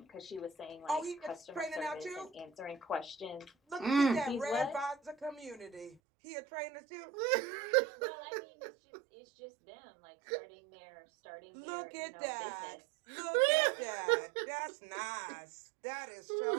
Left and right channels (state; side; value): drops out; left; at 6.0 s